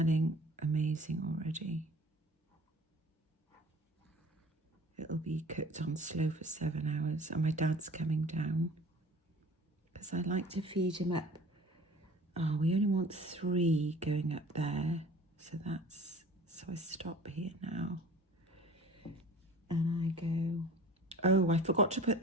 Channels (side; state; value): both; normal; correlation 0.45